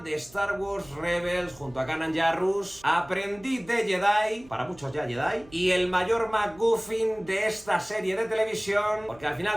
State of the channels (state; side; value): noise; right; hum, 24 dB below the sound